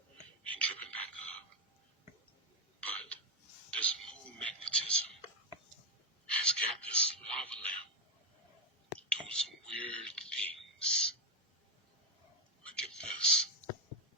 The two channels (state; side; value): normal; both; correlation 0.06